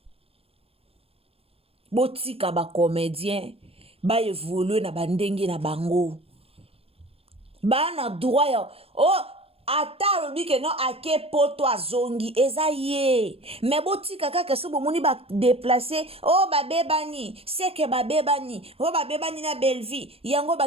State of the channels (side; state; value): left; late; 0.28 ms